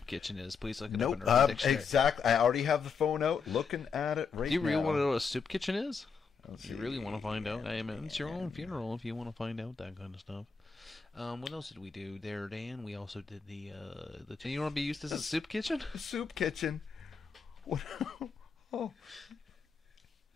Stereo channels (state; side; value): quieter; right; 5.6 dB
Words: kitchen is, please look it up in Urban Dictionary. Exactly. I already have the phone out, looking at it right now. Do you really want to know what a soup kitchen is? You really want to find out? I mean, it's your own funeral if you want to find out that kind of stuff. What else did we do there, Dan? We also did the. You want to be used as a soup kitchen? Soup kitchen. What? Oh.